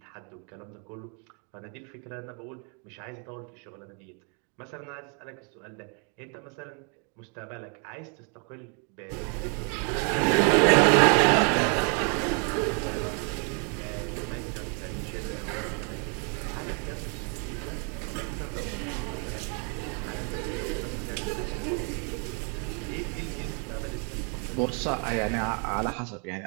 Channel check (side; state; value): left; quieter; 37.7 dB